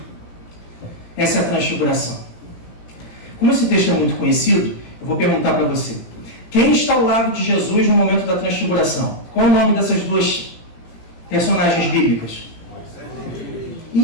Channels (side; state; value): right; late; 18 ms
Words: Essa é a transfiguração. Como esse texto é muito conhecido, eu vou perguntar para você: quem está ao lado de Jesus no momento da transfiguração? Qual é o nome dessas duas personagens bíblicas?